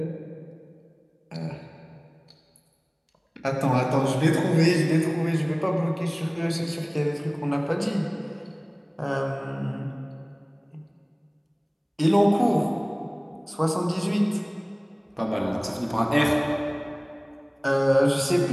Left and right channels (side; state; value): both; identical; correlation 1.00